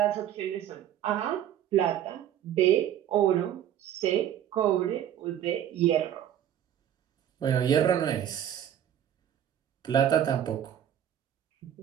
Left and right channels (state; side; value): quieter; left; 10.6 dB